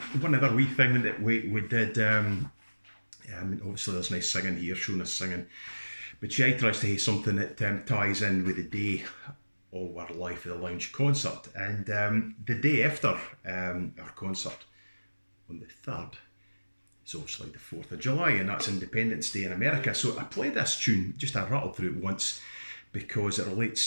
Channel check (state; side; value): inverted; both; correlation -1.00